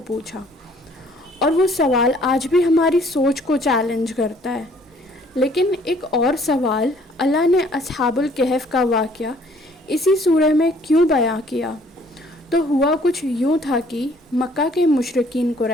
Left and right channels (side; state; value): both; normal; correlation 0.60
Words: پوچھا؟ اور وہ سوال آج بھی ہماری سوچ کو چیلنج کرتا ہے۔ لیکن ایک اور سوال، اللہ نے اصحاب الکہف کا واقعہ اسی سورہ میں کیوں بیان کیا؟ تو ہوا کچھ یوں تھا کہ مکہ کے مشرکین